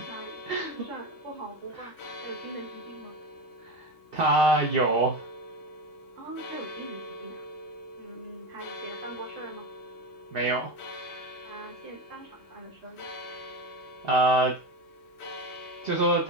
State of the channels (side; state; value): both; normal; correlation 0.20